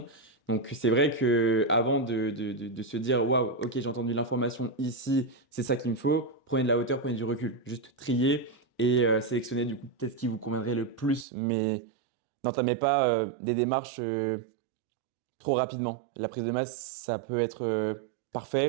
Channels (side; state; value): left; drops out; at 11.2 s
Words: Donc, c'est vrai que avant de se dire, waouh, ok, j'ai entendu l'information ici, c'est ça qu'il me faut, prenez de la hauteur, prenez du recul. Juste trier et sélectionner du coup peut-être ce qui vous conviendrait le plus, mais n'entamez pas des démarches. Trop rapidement. La prise de masse, ça peut être